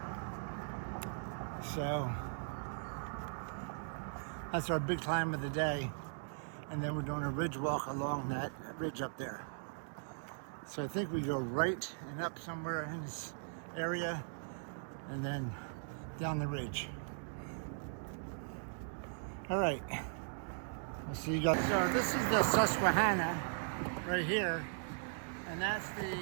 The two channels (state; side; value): silent; left; digital silence